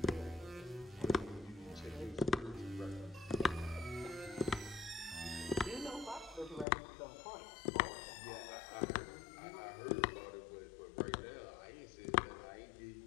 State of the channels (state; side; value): drops out; right; at 6.7 s